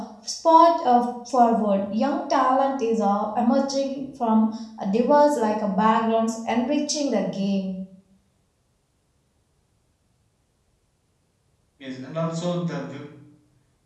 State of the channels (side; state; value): both; identical; correlation 1.00